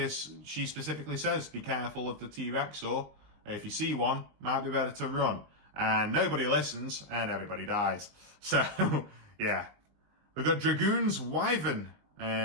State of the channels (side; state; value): left; late; 20 ms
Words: she specifically says, be careful of the T-Rexor. If you see one, might be better to run. And nobody listens, and everybody dies. So, yeah. We've got Dragoon's Wyvern,